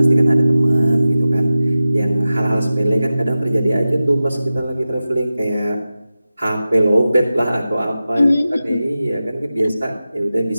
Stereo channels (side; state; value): both; inverted; correlation -0.95